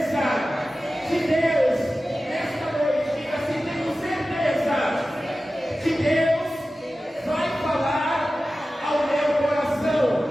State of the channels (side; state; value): both; normal; correlation 0.95